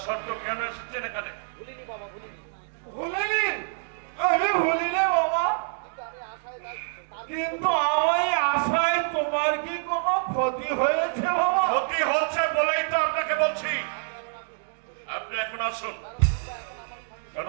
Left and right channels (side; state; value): left; silent; digital silence